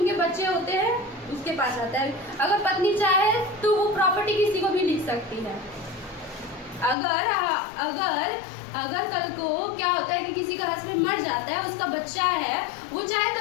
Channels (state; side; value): drops out; right; at 7.0 s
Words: बच्चे होते हैं, उसके पास आता है। अगर पत्नी चाहे तो वो प्रॉपर्टी किसी को भी लिख सकती है। अगर कल को क्या होता है कि किसी का हस्बैंड मर जाता है, उसका बच्चा है, वो चाहे